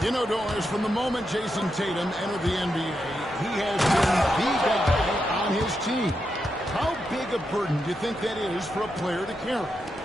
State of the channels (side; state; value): both; normal; correlation 0.85